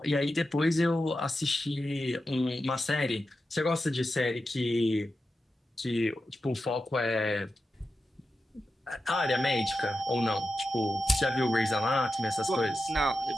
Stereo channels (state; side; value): normal; both; correlation 0.90